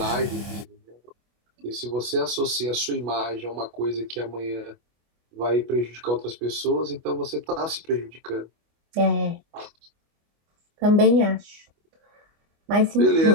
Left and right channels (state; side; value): late; left; 25 ms